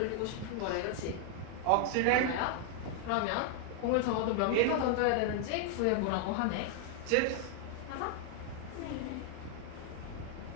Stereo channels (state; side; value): different; both; correlation 0.00